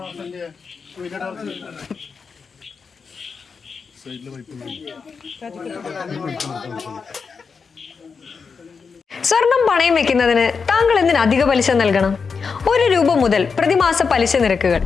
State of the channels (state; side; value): quieter; right; 5.4 dB